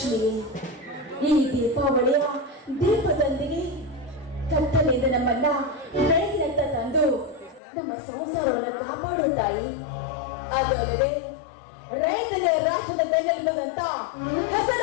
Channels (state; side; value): drops out; right; at 7.6 s